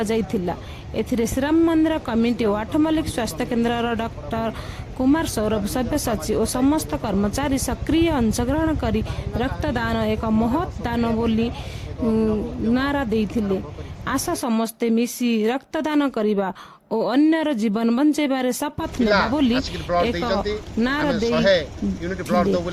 जाइथिला। एथिरे श्रीराम मंदिर कमिटी और 8 मल्लिक स्वास्थ्य केन्द्र डॉक्टर कुमार सौरभ सभ्य सचिव और समस्त कर्मचारी सक्रिय अंशग्रहण करी रक्तदान एक महत् दान बोली नारा देइथिले। आशा समस्ते मिसी रक्तदान करिबा और अन्यर जीवन बंचेबारे शपथ नेबा बोली एक नारा दे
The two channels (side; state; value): both; identical; correlation 1.00